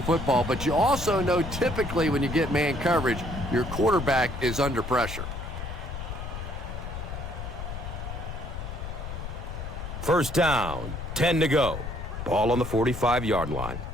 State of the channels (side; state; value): left; noise; rumble, 7 dB below the sound